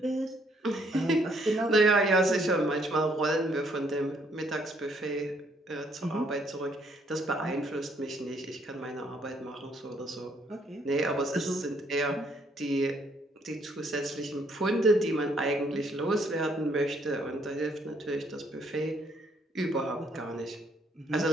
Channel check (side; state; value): both; normal; correlation 0.68